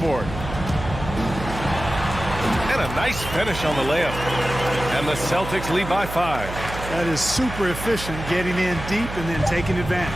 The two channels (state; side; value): noise; right; hum, 9 dB below the sound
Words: And a nice finish on the layup. And the Celtics lead by 5. That is super efficient, getting in deep and then taking